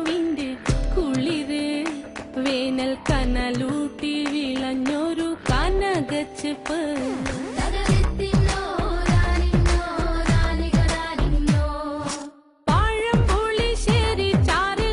കുളിര് വേനൽ കനലൂട്ടി വിളഞ്ഞൊരു കനകച്ചെപ്പ്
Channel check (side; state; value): both; identical; correlation 1.00